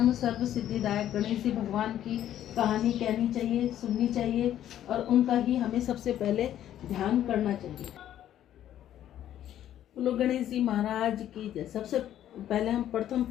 सर्व सिद्धिदायक गणेश जी भगवान की कहानी कहनी चाहिए, सुननी चाहिए और उनका ही हमें सबसे पहले ध्यान करना चाहिए। बोलो गणेश जी महाराज की जय। सबसे पहले हम प्रथम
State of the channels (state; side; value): quieter; right; 11.5 dB